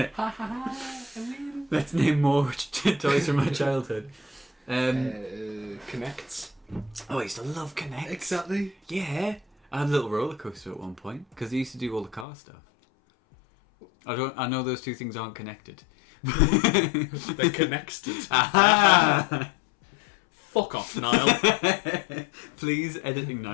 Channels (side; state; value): right; drops out; at 12.2 s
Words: Let's name more toys from my childhood. Connects. Oh, I used to love Connect. Exactly. Yeah. I had a little roller coaster at one point because I used to do all the car stuff. I know those two things aren't connected. They're connected. Aha! Fuck off, Niall. Please, editing